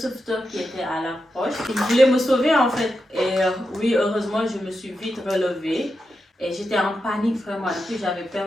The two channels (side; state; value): both; normal; correlation 0.88